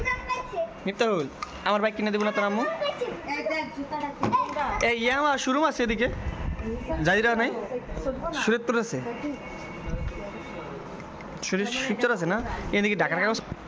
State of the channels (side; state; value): both; identical; correlation 1.00